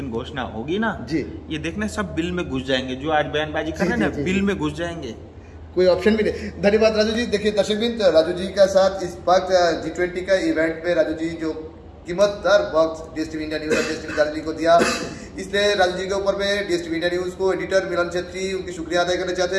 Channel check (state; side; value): identical; both; correlation 1.00